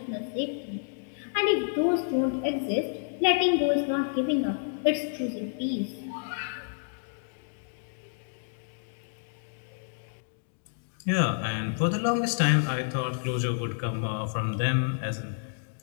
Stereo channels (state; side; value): silent; right; digital silence